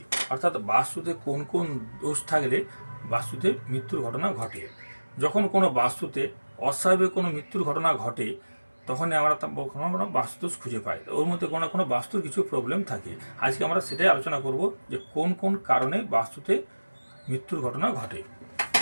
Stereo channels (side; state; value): both; inverted; correlation -1.00